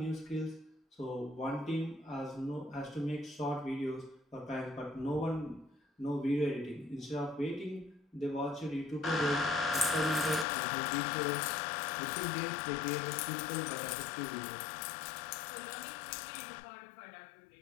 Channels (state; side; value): drops out; right; at 10.5 s